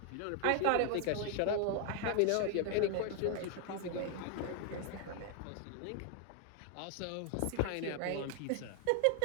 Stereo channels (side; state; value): both; different; correlation 0.00